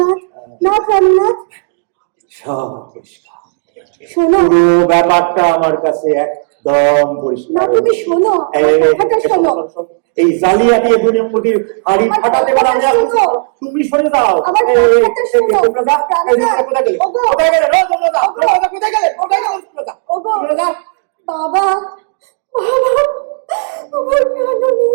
না প্রাণনাথ, সব পরিষ্কার। শোনো, পুরো ব্যাপারটা আমার কাছে একদম পরিষ্কার। না তুমি শোনো, আমার কথাটা শোনো। এই জালিয়াতি দুনিয়ামুখী হাড়ি ফাটাতে পারে আমি। তুমি সরে যাও, আমার কথাটা শোনো। কোথায় গেলে কোথায় গেলে বাবা, বাবা,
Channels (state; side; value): silent; left; 68 dB below the other